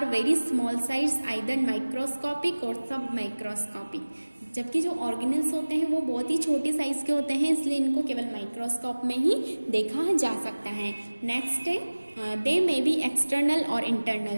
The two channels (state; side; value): inverted; both; correlation -1.00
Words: very small size, either microscopic और सब माइक्रोस्कोपिक। जबकि जो ऑर्गेनेल्स होते हैं वो बहुत ही छोटे साइज के होते हैं, इसलिए इनको केवल माइक्रोस्कोप में ही देखा जा सकता है। नेक्स्ट है दे मे बी एक्सटर्नल और